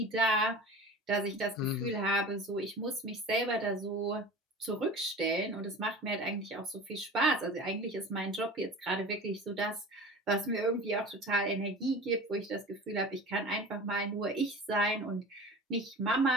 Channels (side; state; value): both; normal; correlation 0.37